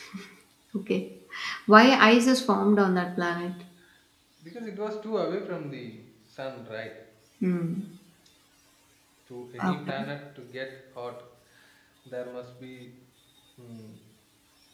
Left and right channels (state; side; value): identical; both; correlation 1.00